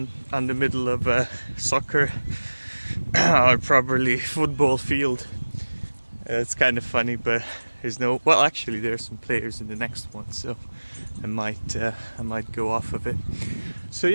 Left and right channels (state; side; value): inverted; both; correlation -1.00